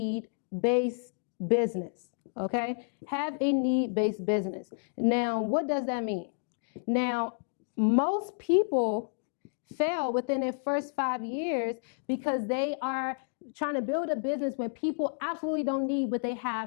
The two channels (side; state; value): right; silent; digital silence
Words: business, okay? Have a need-based business. Now, what does that mean? Now, most people fail within their first 5 years because they are trying to build a business when people absolutely don't need what they